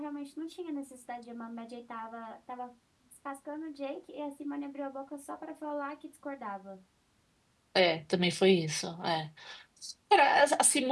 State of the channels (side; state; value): both; identical; correlation 1.00